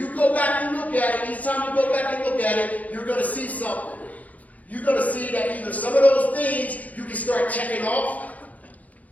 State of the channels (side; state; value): right; late; 0.075 ms